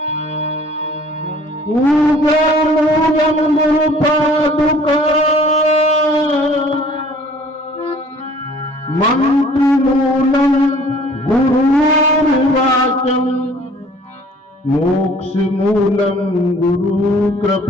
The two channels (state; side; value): normal; both; correlation 0.53